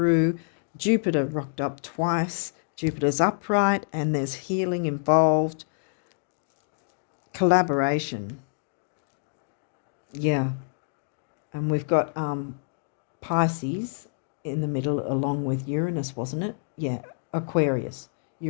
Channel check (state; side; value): silent; right; digital silence